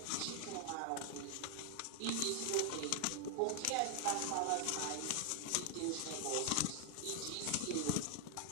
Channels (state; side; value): different; both; correlation 0.00